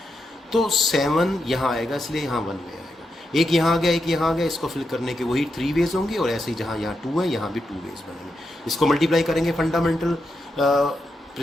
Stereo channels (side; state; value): both; normal; correlation 0.85